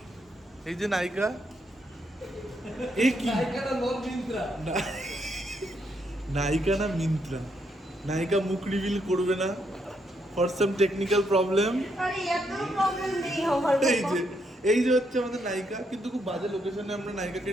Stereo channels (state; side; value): normal; both; correlation 0.77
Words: এই যে নায়িকা, এই কি নায়িকা না মিন্ত্রা। নায়িকা মুখ রিভিল করবে না ফর সাম টেকনিক্যাল প্রবলেম। আরে এত প্রবলেম নেই আমার। এই যে হচ্ছে আমাদের নায়িকা, কিন্তু খুব বাজে লোকেশনে আমরা নায়িকাকে